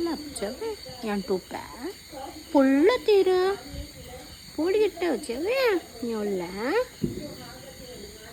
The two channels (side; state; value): both; identical; correlation 1.00